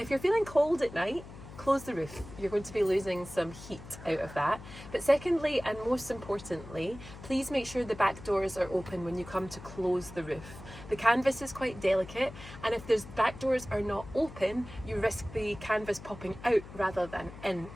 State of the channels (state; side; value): noise; left; hum, 15 dB below the sound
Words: you're feeling cold at night, close the roof. You're going to be losing some heat out of that. But secondly, and most importantly, please make sure the back doors are open when you come to close the roof. The canvas is quite delicate, and if those back doors are not open, you risk the canvas popping out rather than in,